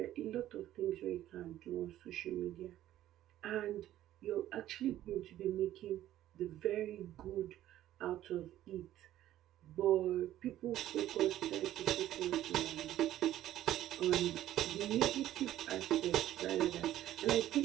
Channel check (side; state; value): left; quieter; 13.2 dB